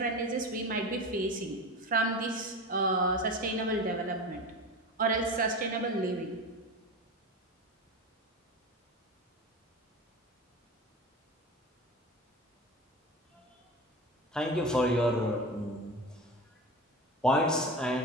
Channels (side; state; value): both; normal; correlation 0.28